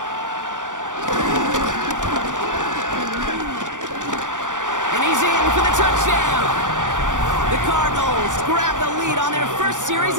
And he's in for the touchdown. The Cardinals grab the lead on their first series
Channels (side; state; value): left; late; 0.87 ms